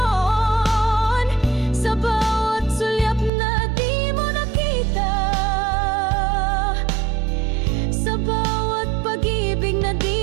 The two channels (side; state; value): left; drops out; at 3.3 s